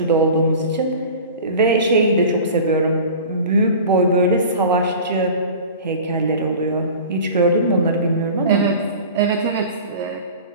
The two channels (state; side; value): inverted; both; correlation -0.38